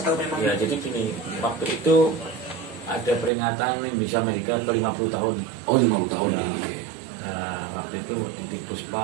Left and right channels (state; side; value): drops out; left; at 3.3 s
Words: atau memang? Ya, jadi gini, waktu itu ada peringatan Indonesia Amerika ke 50 tahun. Oh, 50 tahun Ya. ya. Nah, waktu itu di